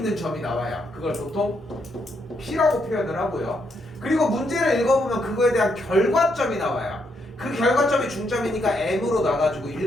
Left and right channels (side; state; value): both; normal; correlation 0.77